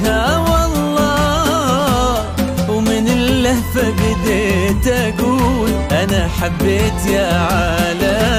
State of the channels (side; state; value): both; identical; correlation 1.00